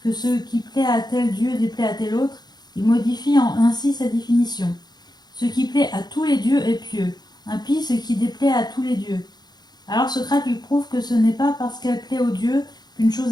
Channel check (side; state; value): right; late; 0.20 ms